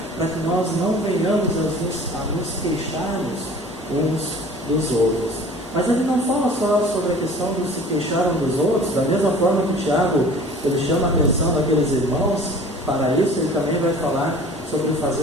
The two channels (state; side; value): normal; both; correlation 0.46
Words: para que nós não venhamos a nos queixarmos uns dos outros. Mas ele não fala só sobre a questão de se queixar uns dos outros. Da mesma forma que Tiago, ele chama a atenção daqueles irmãos, para isso ele também vai falar sobre